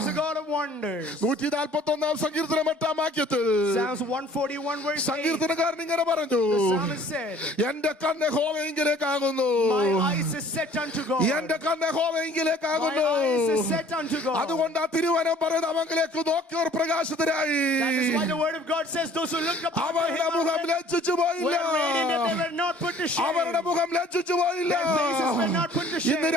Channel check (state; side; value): normal; both; correlation 0.53